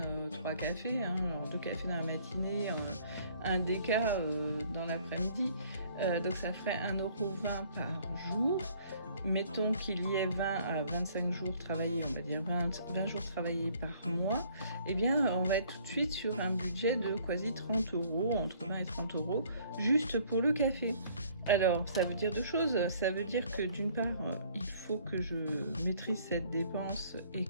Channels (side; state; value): both; inverted; correlation -0.59